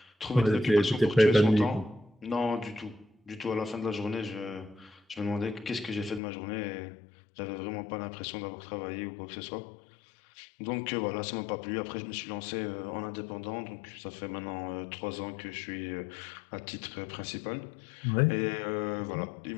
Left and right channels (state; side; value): drops out; right; at 6.2 s